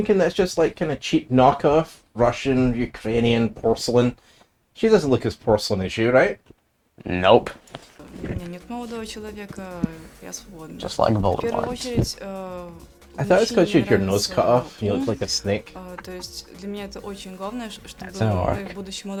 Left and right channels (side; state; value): both; identical; correlation 1.00